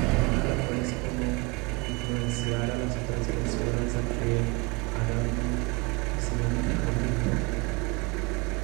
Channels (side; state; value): left; quieter; 26.9 dB